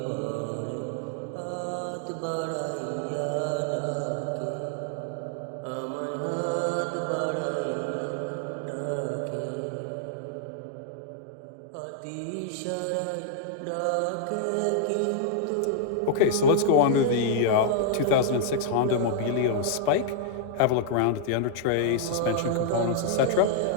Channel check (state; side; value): different; both; correlation -0.01